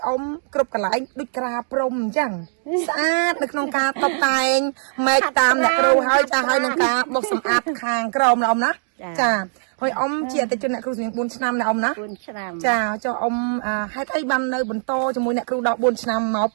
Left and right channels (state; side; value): silent; left; digital silence